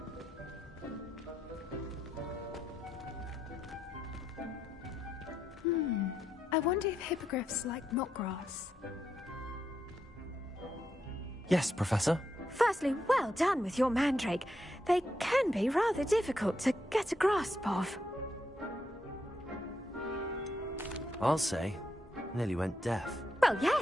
I wonder if hippogriffs like knotgrass. Yes, Professor. Firstly, well done with your mandrake. They can be rather difficult to get a grasp of. I'll say. Nearly went deaf. Well,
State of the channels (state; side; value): normal; both; correlation 0.81